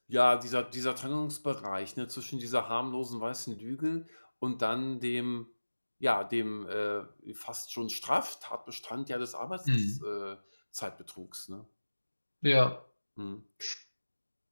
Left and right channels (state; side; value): inverted; both; correlation -1.00